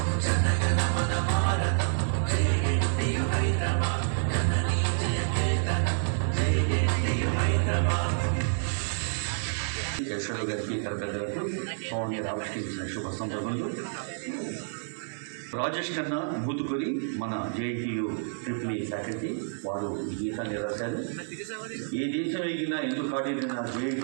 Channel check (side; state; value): left; silent; 59 dB below the other